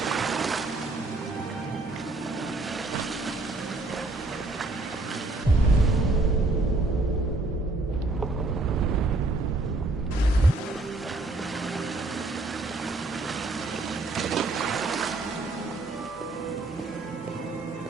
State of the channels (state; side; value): quieter; left; 3.1 dB